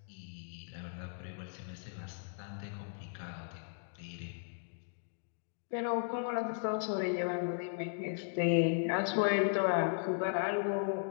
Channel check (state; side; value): silent; right; digital silence